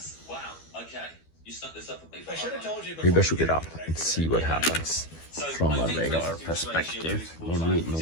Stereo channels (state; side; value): late; right; 12 ms